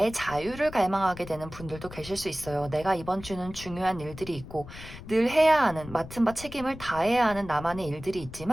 자유를 갈망하게 되는 분들도 계실 수 있어요. 내가 이번 주는 중요한 일들이 있고 늘 해야 하는, 맡은 바 책임을 다해야 하는 나만의 일들이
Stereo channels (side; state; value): left; noise; rumble, 14 dB below the sound